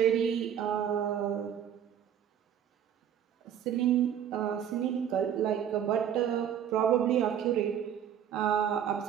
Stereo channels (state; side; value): quieter; left; 9.4 dB